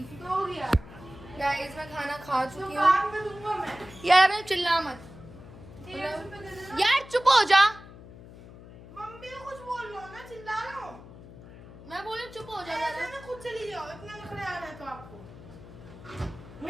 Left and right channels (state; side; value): noise; left; hum, 18 dB below the sound